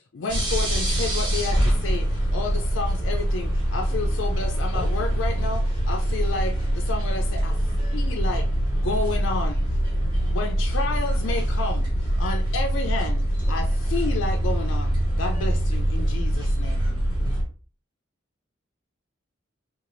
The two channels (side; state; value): both; normal; correlation 0.80